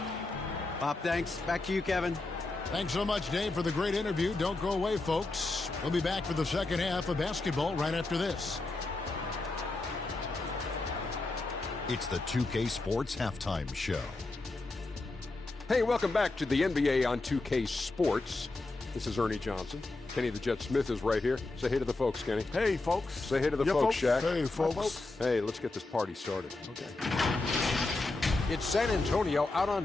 Pop, thanks. Back to you, Kevin. Thanks so much, Dave, for the great interview. Don't go away, folks. We'll be back for the second half of basketball right after this. It's the 2K Sports Halftime Show. Hey, welcome back to the NBA on 2K Sports. This is Ernie Johnson. Kenny the Jet Smith is right here. Say hey to the folks, Kenny. Hey, folks. Say hey to the folks, Shaq. Hey, folks. Hey, let's get this party started. Okay. It's San Antonio out on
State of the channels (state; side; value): quieter; right; 3.2 dB